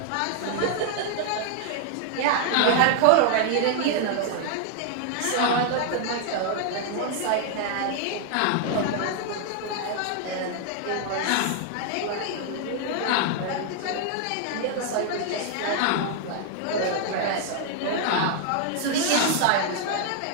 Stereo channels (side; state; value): both; different; correlation 0.00